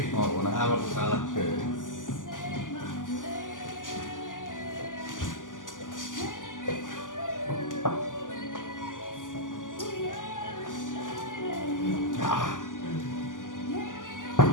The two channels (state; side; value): late; right; 0.88 ms